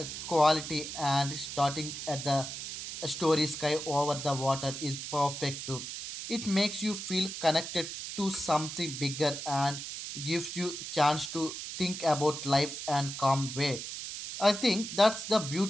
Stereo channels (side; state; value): right; noise; hiss, 7 dB below the sound